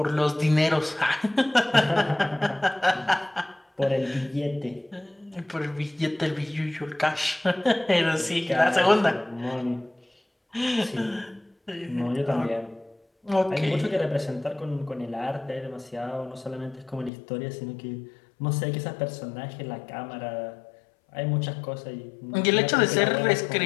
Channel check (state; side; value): drops out; right; at 17.1 s